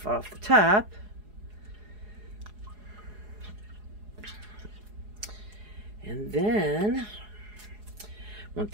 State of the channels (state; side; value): late; left; 4.8 ms